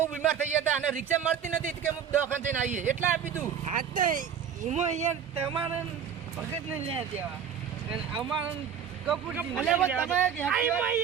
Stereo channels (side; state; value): left; quieter; 8.0 dB